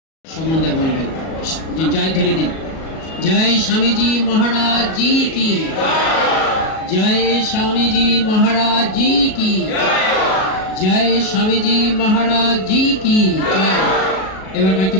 সম্বন্ধে বলবেন, জয়ধ্বনি দিন। জয় স্বামীজি মহারাজ জি কি, জয় স্বামীজি মহারাজ জি কি, জয় স্বামীজি মহারাজ জি কি জয়। এবার কয়েকটি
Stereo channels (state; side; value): late; right; 37 ms